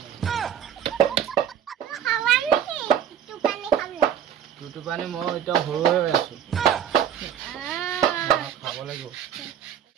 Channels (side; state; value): left; quieter; 9.2 dB